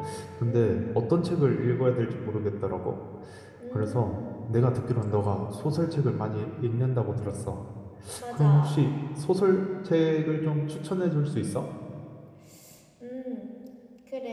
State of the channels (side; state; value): both; identical; correlation 1.00